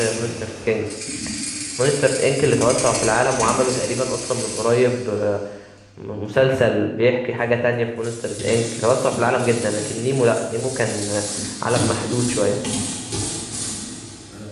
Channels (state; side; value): identical; both; correlation 1.00